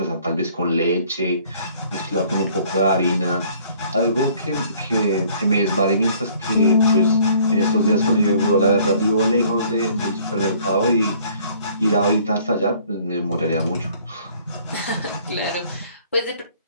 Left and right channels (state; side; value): inverted; both; correlation -0.57